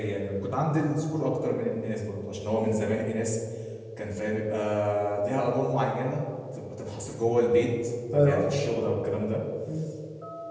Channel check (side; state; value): both; identical; correlation 1.00